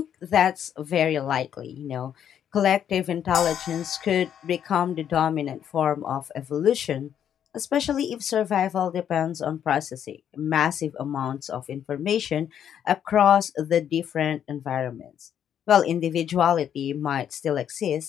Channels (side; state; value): right; quieter; 9.3 dB